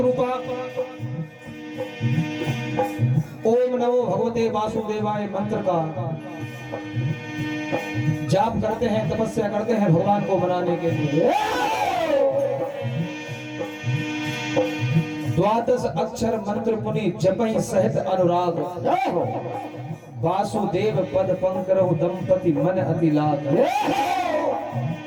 ओम नमो भगवते वासुदेवाय मंत्र का जाप करते हैं, तपस्या करते हैं भगवान को मनाने के लिए। द्वादश अक्षर मंत्र पुनि जपहि सहित अनुराग, वासुदेव पद पंकरहु दंपति मन अति लाग।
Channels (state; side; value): identical; both; correlation 1.00